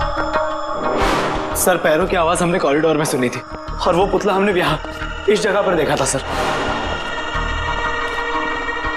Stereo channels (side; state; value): both; identical; correlation 1.00